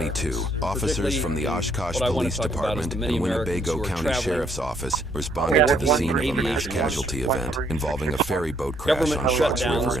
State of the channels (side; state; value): both; normal; correlation 0.68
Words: officers from the Oshkosh Police Department and Winnebago County Sheriff's Office responded to the scene of a mass casualty event involving a ferry boat crash on Fox River